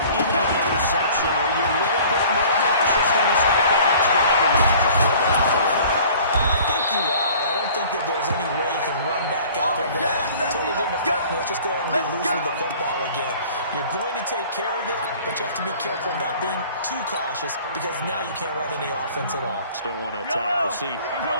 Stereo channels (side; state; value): both; inverted; correlation -0.49